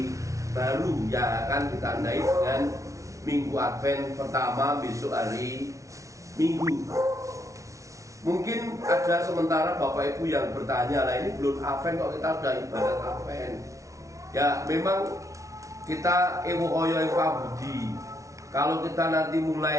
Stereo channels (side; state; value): left; late; 0.15 ms